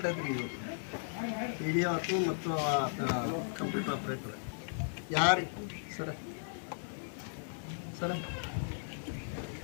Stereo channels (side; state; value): right; silent; digital silence